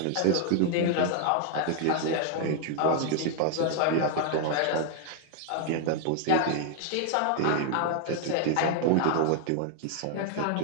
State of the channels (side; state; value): both; different; correlation 0.00